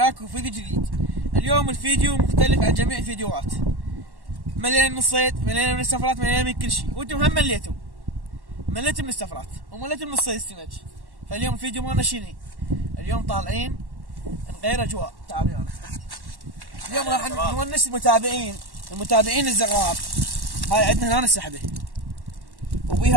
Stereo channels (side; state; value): left; late; 1.1 ms